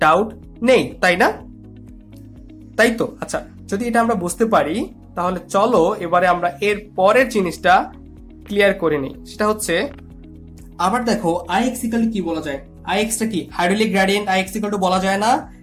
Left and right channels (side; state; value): both; identical; correlation 1.00